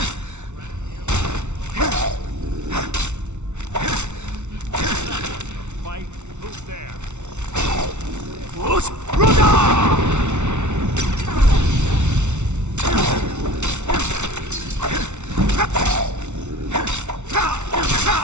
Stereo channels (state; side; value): late; left; 0.83 ms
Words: Fight. Who's there?